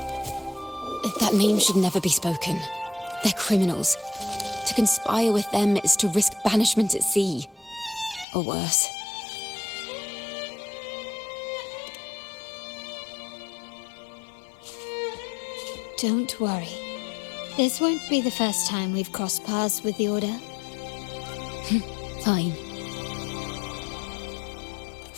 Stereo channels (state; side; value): drops out; right; at 8.2 s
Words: That name should never be spoken. They're criminals. To conspire with them is to risk banishment at sea. Or worse. Don't worry. This won't be the first time we've crossed paths with the Order. Fine.